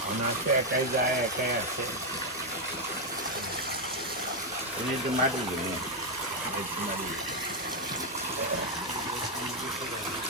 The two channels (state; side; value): normal; both; correlation 0.02